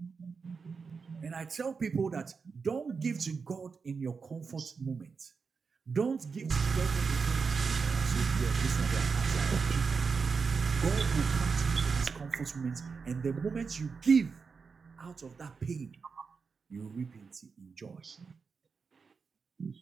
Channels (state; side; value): quieter; left; 5.2 dB